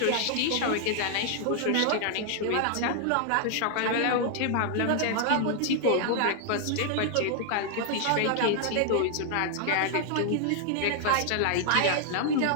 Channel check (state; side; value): different; both; correlation 0.00